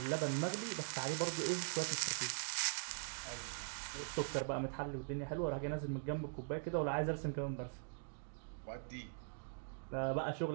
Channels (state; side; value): silent; left; digital silence